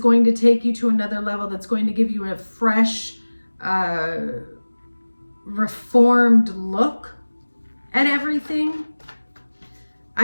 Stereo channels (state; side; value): inverted; both; correlation -1.00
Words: to take you to another level, that's going to give you a fresh, reformed look at everything.